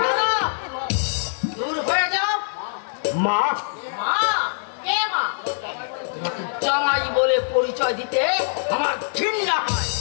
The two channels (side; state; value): right; silent; 57 dB below the other